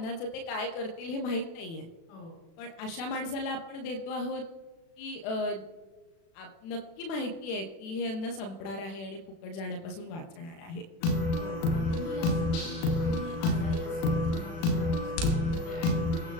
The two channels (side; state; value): right; late; 36 ms